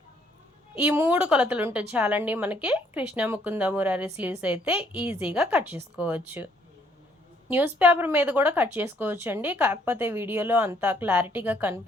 ఈ 3 కొలతలు ఉంటే చాలండి మనకి కృష్ణ ముకుంద మురారి స్లీవ్స్ అయితే ఈజీగా కట్ చేసుకోవచ్చు. న్యూస్ పేపర్ మీద కూడా కట్ చేసుకోవచ్చు అండి, కాకపోతే వీడియోలో అంత క్లారిటీగా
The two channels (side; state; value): both; normal; correlation 0.66